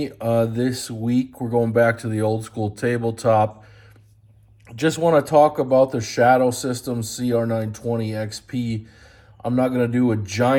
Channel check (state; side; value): identical; both; correlation 1.00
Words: this week. We're going back to the old school tabletop. Just want to talk about the Shadow Systems CR920XP. I'm not going to do a